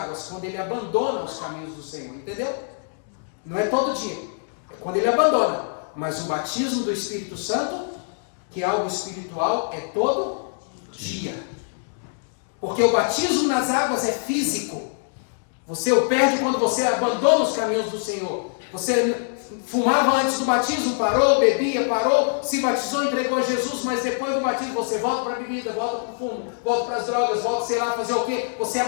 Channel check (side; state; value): right; silent; digital silence